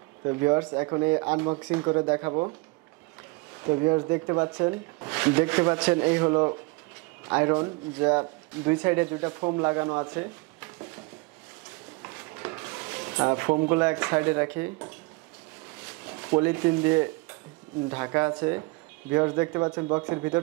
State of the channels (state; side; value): quieter; left; 26.1 dB